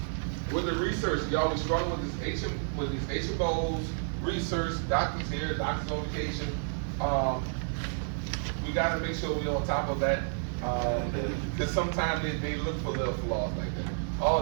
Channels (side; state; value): left; silent; digital silence